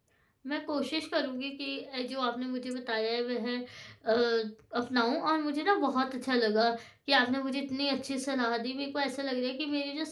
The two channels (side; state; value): both; identical; correlation 1.00